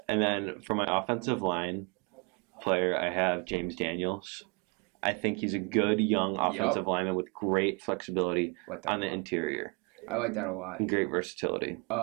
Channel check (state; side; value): quieter; left; 32.1 dB